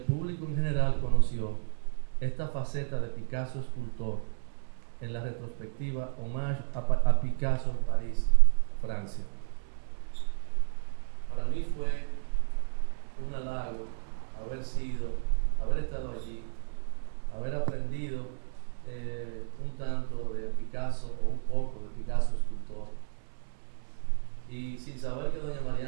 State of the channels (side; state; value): left; silent; 57 dB below the other